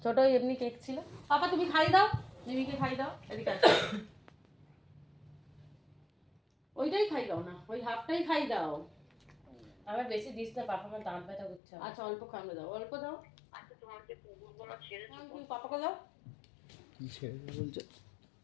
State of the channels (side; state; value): right; drops out; at 11.6 s